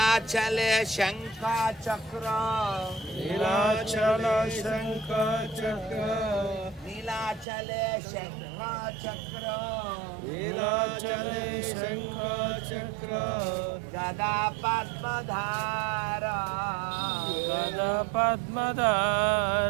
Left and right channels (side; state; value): left; drops out; at 7.5 s